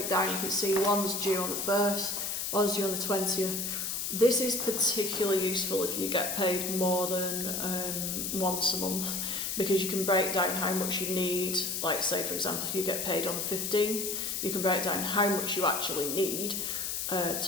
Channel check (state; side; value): noise; left; hiss, 2 dB below the sound